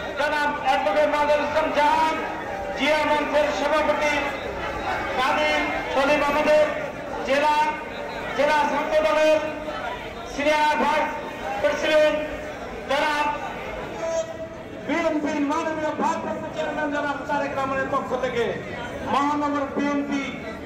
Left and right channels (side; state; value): both; identical; correlation 1.00